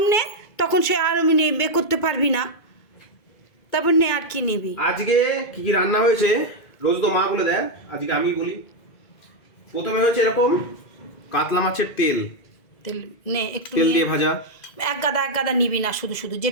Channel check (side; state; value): right; late; 2.0 ms